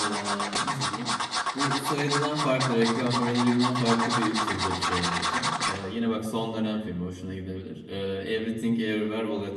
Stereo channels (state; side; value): identical; both; correlation 1.00